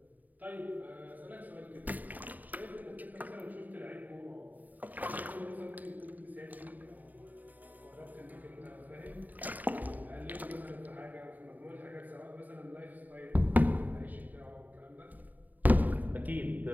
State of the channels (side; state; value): left; late; 0.082 ms